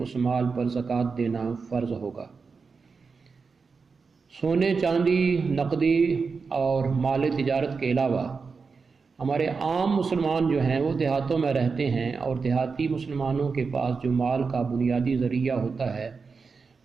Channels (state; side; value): quieter; left; 4.9 dB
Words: مال پر زکوٰۃ دینا فرض ہوگا۔ سونے، چاندی، نقدی اور مال تجارت کے علاوہ ہمارے عام مسلمان جو ہیں وہ دیہاتوں میں رہتے ہیں، اور دیہاتی مسلمانوں کے پاس جو مال کا بنیادی ذریعہ ہوتا ہے